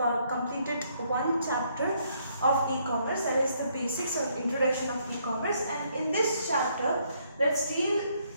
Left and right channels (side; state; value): both; inverted; correlation -0.70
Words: completed one chapter of e-commerce, that is the basics or introduction of e-commerce, and in this chapter let's deal